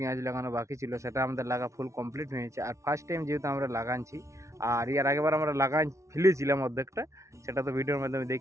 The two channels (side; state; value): left; late; 0.14 ms